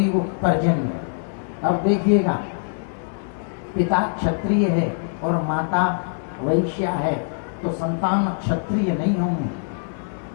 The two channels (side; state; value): right; silent; 56 dB below the other